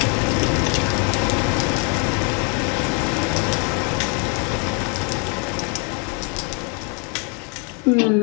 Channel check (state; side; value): quieter; right; 36.2 dB